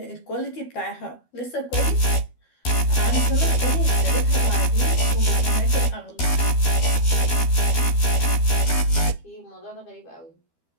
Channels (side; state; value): right; late; 12 ms